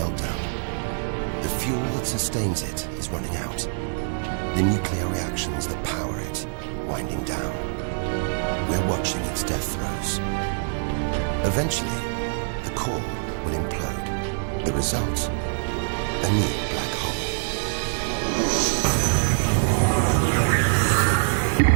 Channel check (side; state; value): left; silent; digital silence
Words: The fuel that sustains it is running out. The nuclear reactions that power it winding down. We're watching its death throes. Eventually, the core will implode. The result, a new black hole.